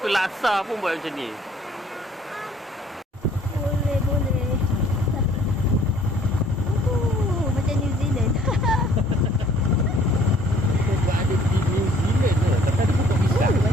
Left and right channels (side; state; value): both; normal; correlation 0.58